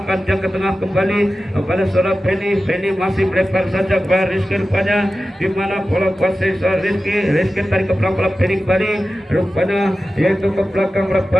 dia ke tengah kembali pada saudara Benny masih melebar saja kepada Rizky rupanya di mana bola kuasai Rizky tarik ke belakang bola Benny kembali rupanya yaitu ke belakang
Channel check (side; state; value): both; normal; correlation 0.94